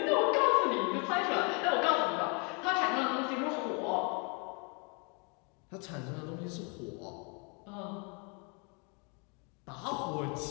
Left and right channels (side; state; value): right; quieter; 34.2 dB